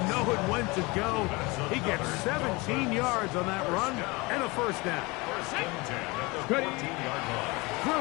knowing when to go. He gets 17 yards on that run and a first down. First and 10 at the 14-yard line.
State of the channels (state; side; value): quieter; right; 25.1 dB